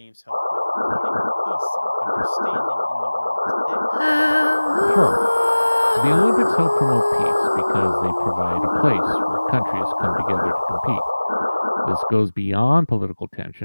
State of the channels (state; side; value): inverted; both; correlation -1.00